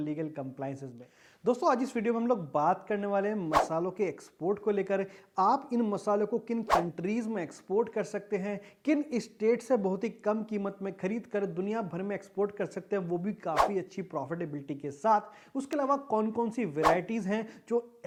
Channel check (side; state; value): both; identical; correlation 1.00